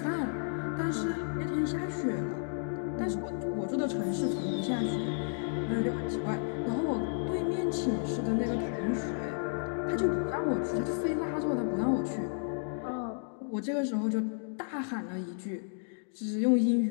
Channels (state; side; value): silent; right; digital silence